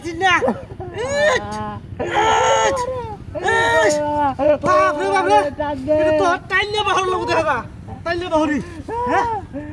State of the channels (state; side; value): identical; both; correlation 1.00